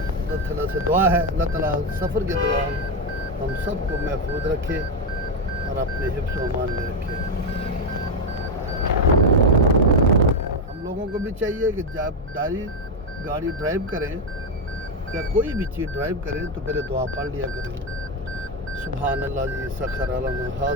تعالیٰ سے دعا ہے اللہ تعالیٰ سفر کے دوران ہم سب کو محفوظ رکھے اور اپنے حفظ و امان میں رکھے. ہم لوگوں کو بھی چاہیے کہ جب گاڑی ڈرائیو کریں یا کوئی بھی چیز ڈرائیو کریں تو پہلے دعا پڑھ لیا کریں. سبحان اللہ جی سخر لنا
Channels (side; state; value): both; normal; correlation 0.08